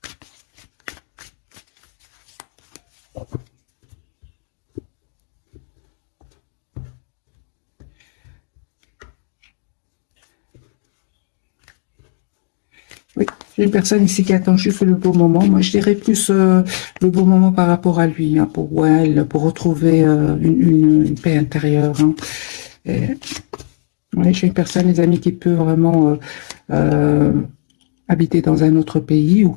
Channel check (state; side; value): silent; right; digital silence